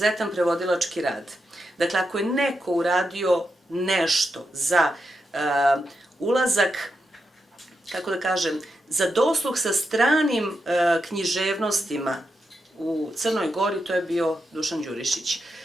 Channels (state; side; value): normal; both; correlation 0.86